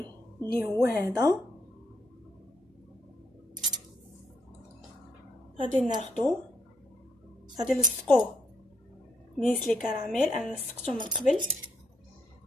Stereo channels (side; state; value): both; normal; correlation 0.74